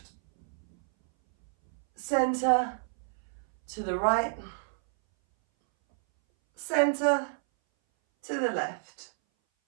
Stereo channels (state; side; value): silent; left; 58 dB below the other